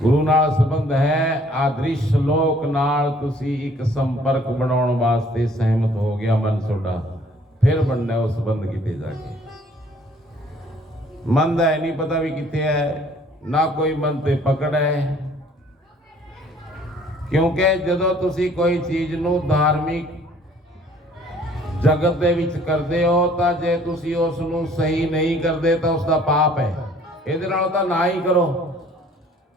ਨਾਲ ਸੰਬੰਧ ਹੈ ਆਦ੍ਰਿਸ਼ ਲੋਕ ਨਾਲ। ਤੁਸੀਂ ਇੱਕ ਸੰਪਰਕ ਬਣਾਉਣ ਵਾਸਤੇ ਸਹਿਮਤ ਹੋ ਗਿਆ ਮਨ ਤੁਹਾਡਾ, फिर बनना उस बंद किते जाके। मन का नहीं पता भी कितने है, ना कोई मन ते पकड़ है, क्योंकि जदों तुसी कोई चीज नू धार्मिक जगत दे विच करदे हो तां जे तुसी उस नू सही नहीं करदे तां उसदा पाप है। इहदे नाल तां ना ही करो।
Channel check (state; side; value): normal; both; correlation 0.57